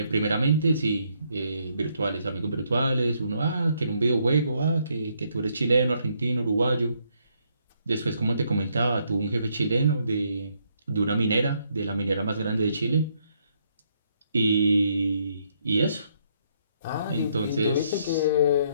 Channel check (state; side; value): inverted; both; correlation -0.73